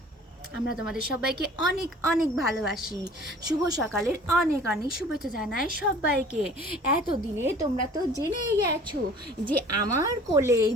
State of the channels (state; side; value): normal; both; correlation 0.49